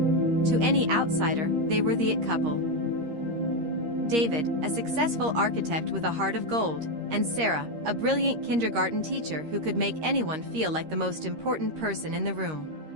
To any outsider, they were the it couple. David, a successful architect with a heart of gold, and Sarah, a brilliant kindergarten teacher who could make anyone feel like the most important person in the room.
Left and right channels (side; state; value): left; late; 13 ms